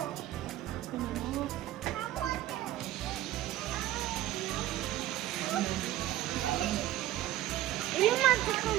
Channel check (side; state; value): left; quieter; 14.3 dB